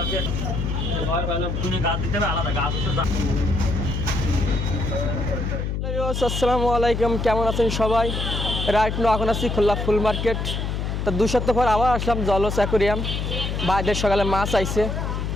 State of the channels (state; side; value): noise; left; hum, 2 dB below the sound